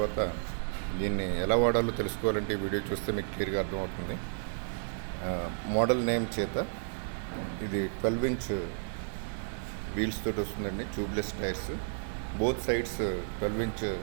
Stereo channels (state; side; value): silent; left; digital silence